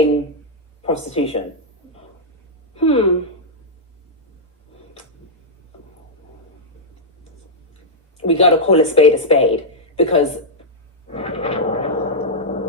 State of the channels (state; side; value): normal; both; correlation -0.06